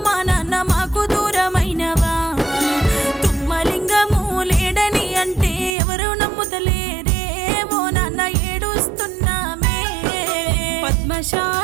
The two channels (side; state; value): left; drops out; at 5.8 s